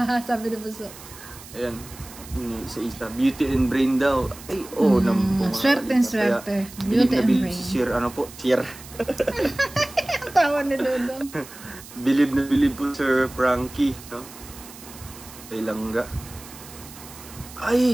sabi ni Buso. Ayan. Sa isa. Beauty and brain daw. Ay, naman po. Swerte. Beauty and brain. Sir, Sir. Ang tawa ni Dudong. Bilib na bilib po Sir Frankie. No? Kay Langga.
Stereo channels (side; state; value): right; noise; hiss, 17 dB below the sound